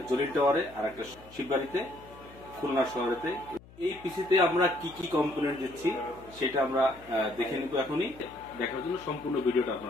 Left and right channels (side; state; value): left; noise; hum, 22 dB below the sound